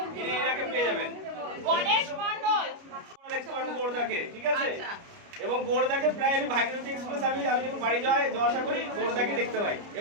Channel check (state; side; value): late; left; 29 ms